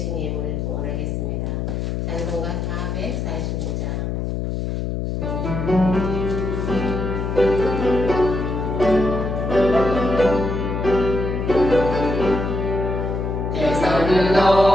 예물을 구원하겠습니다. 찬송가 445장. 대산을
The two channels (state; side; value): noise; left; hum, 2 dB below the sound